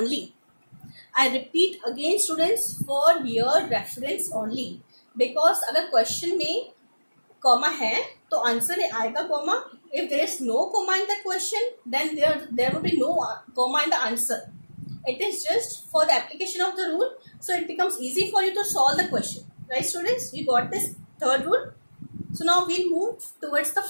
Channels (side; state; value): both; inverted; correlation -1.00